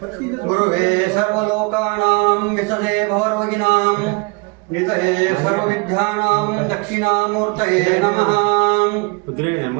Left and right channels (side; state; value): left; quieter; 29.4 dB